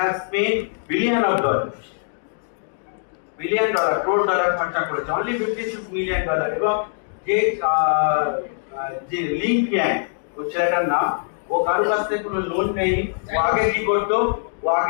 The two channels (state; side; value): silent; right; digital silence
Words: spent $billion, crore dollar খরচা করেছে, only $56 million। এবং যে লিঙ্ক ইয়াং ও ছেলেটার নাম, ও কারোর কাছ থেকে কোনো লোন নেয়নি। ও আগে কি করতো, ও